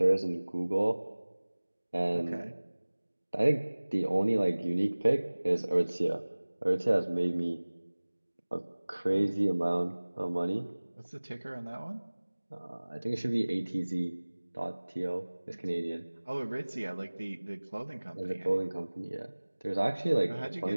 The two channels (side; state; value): both; inverted; correlation -1.00